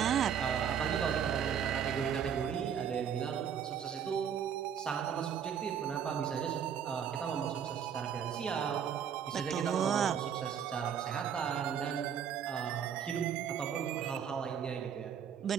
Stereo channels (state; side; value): quieter; left; 8.1 dB